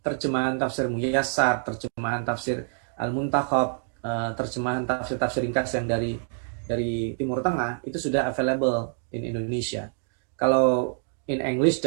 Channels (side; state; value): left; silent; 59 dB below the other